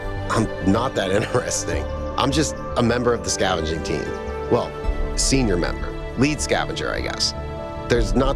I'm not that interesting. I'm just a member of the scavenging team. Well, senior member. Lead scavenger, I guess. There's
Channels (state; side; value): identical; both; correlation 1.00